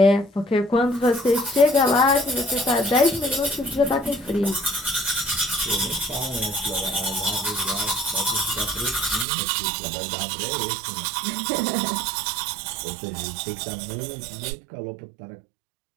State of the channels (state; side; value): drops out; left; at 9.2 s